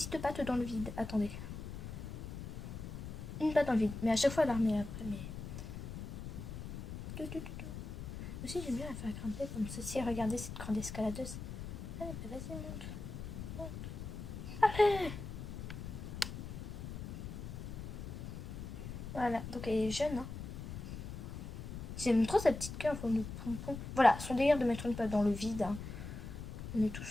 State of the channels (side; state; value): left; noise; rumble, 8 dB below the sound